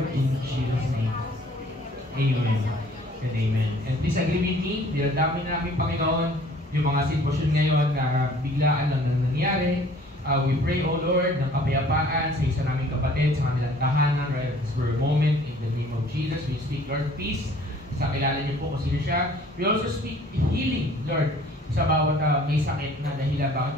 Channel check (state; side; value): normal; both; correlation 0.54